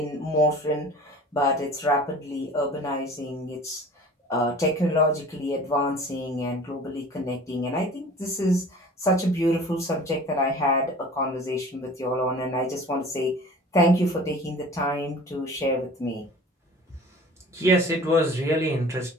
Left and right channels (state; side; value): normal; both; correlation 0.43